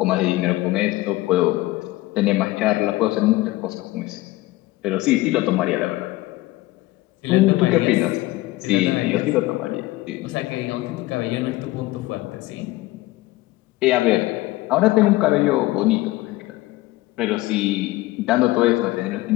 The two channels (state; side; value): quieter; right; 18.7 dB